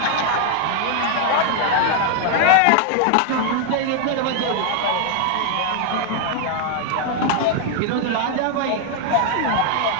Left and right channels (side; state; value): both; different; correlation 0.00